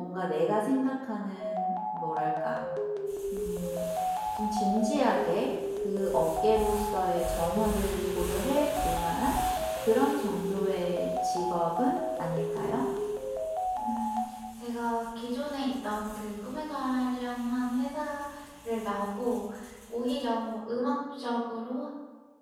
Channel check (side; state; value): both; identical; correlation 1.00